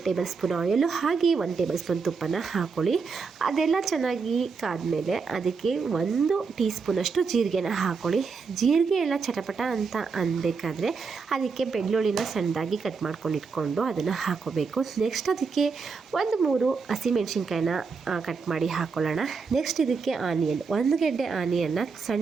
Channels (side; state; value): left; quieter; 5.0 dB